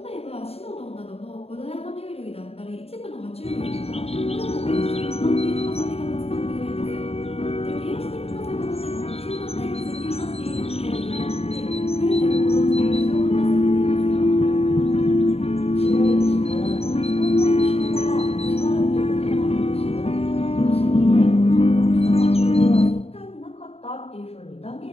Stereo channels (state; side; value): late; right; 0.29 ms